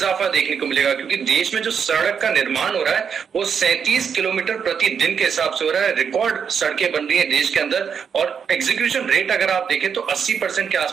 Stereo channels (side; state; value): left; quieter; 7.0 dB